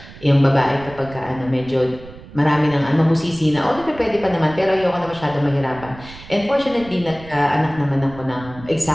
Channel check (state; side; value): noise; right; rumble, 18 dB below the sound